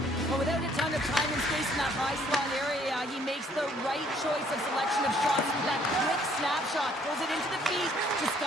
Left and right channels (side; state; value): both; normal; correlation 0.63